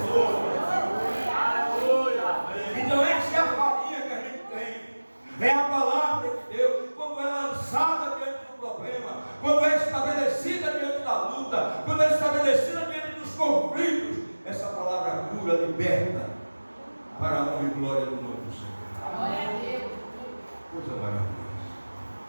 Então essa é a farinha que a gente tem. É a palavra de Deus, quando é lançada diante do problema, quando é estabelecida diante da luta, quando é estabelecida diante dos conflitos, essa palavra cura, liberta, para a honra e glória do nome do Senhor. Glória a Deus. Coisa maravilhosa.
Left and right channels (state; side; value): inverted; both; correlation -1.00